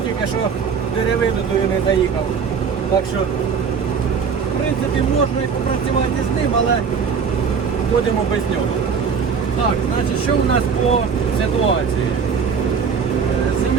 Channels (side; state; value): left; quieter; 6.2 dB